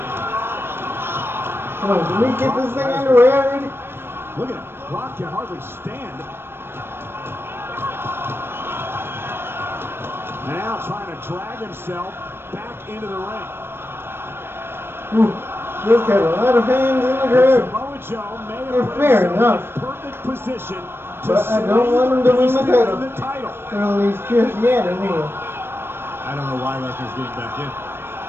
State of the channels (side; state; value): left; late; 0.11 ms